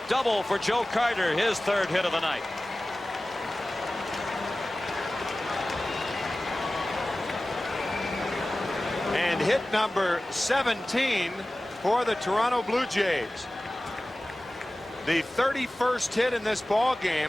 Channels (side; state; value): both; normal; correlation 0.97